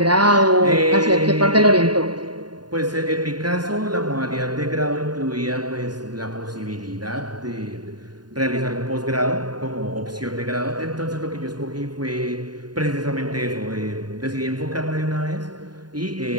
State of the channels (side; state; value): left; late; 0.70 ms